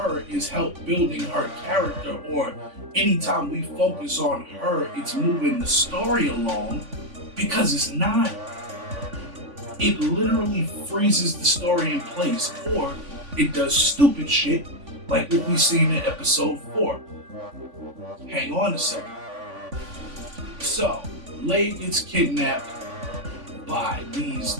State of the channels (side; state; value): left; late; 3.5 ms